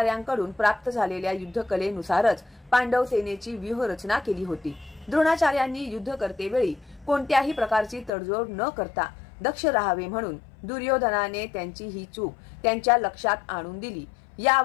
प्राप्त झालेल्या युद्धकलेनुसारच पांडव सेनेची व्यूहरचना केली होती. द्रोणाचार्यांनी युद्ध करतेवेळी कोणत्याही प्रकारची तडजोड न करता दक्ष राहावे म्हणून दुर्योधनाने त्यांची ही चूक त्यांच्या लक्षात आणून दिली.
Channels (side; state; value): right; drops out; at 8.1 s